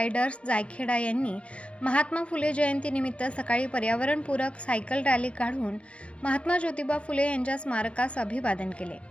जायखेडा यांनी महात्मा फुले जयंतीनिमित्त सकाळी पर्यावरणपूरक सायकल रॅली काढून महात्मा ज्योतिबा फुले यांच्या स्मारकास अभिवादन केले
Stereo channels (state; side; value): late; right; 0.061 ms